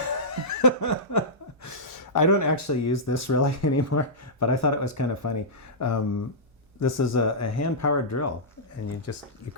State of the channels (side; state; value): both; normal; correlation -0.15